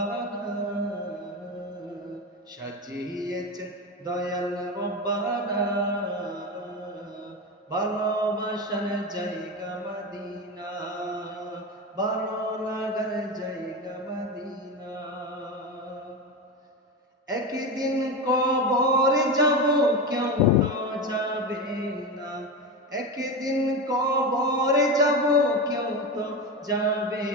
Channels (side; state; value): both; normal; correlation 0.20